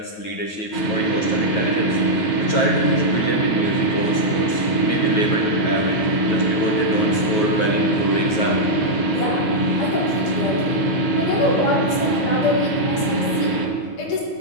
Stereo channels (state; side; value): late; right; 9.3 ms